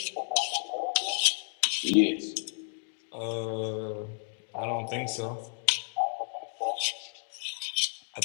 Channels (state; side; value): silent; right; 57 dB below the other